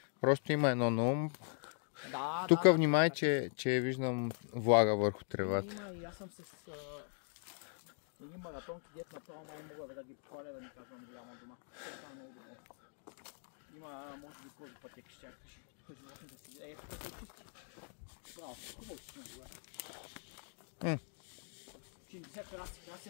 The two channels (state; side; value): silent; right; 51 dB below the other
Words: Просто има едно на ум. Да, тук внимай, че виждам влага върху тревата. Има и аз съм с едни маратонки, дет направо май мога да ги похваля, да ни казвам голяма дума. Това е много добро. Има, може би, кози пътеки ще чакаш. Тук животните си гледа. Тук се пусти. Браво, хубаво си не